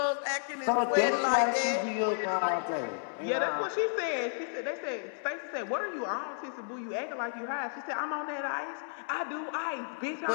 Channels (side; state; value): right; silent; digital silence